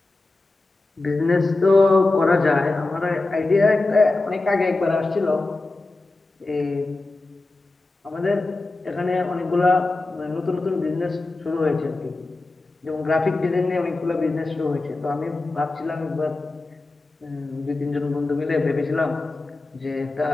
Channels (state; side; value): quieter; right; 3.2 dB